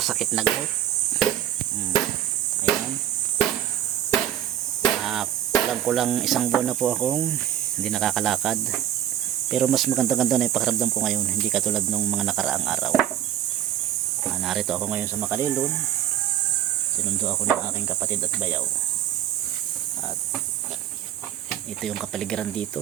na gout. Ayan. Kulang isang buwan na po akong hindi nakakalakad. Pero mas maganda-ganda na yung pakiramdam ko ngayon. Hindi katulad nung mga nakaraang araw. Narito ako ngayon sa Makalilon. Sinundo ako ng aking kapatid at bayaw. At ito yung kapaligiran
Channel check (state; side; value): quieter; left; 11.1 dB